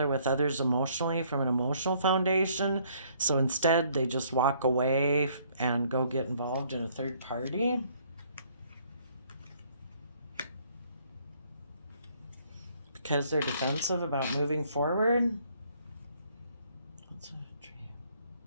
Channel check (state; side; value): inverted; both; correlation -0.63